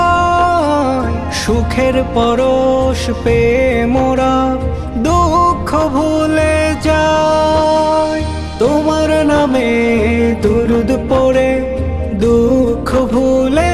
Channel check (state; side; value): identical; both; correlation 1.00